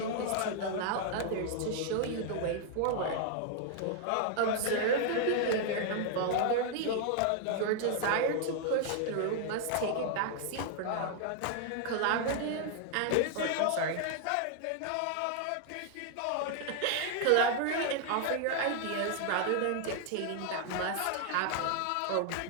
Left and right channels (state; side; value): different; both; correlation 0.00